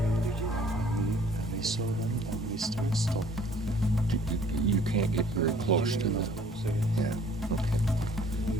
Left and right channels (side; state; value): both; normal; correlation 0.56